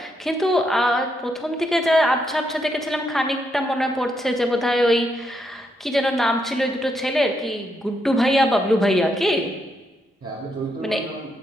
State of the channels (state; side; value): normal; both; correlation 0.79